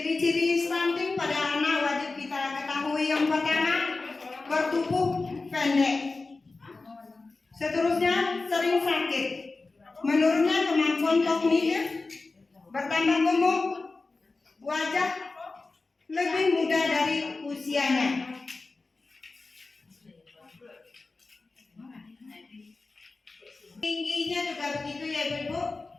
stunting pada anak wajib kita ketahui. Yang pertama, bertubuh pendek. Seterusnya, sering sakit. Menurunnya kemampuan kognitif, bertambah gemuk, wajah lebih muda dari usianya. Tingginya juga begitu ya Ibu.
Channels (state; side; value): quieter; right; 3.6 dB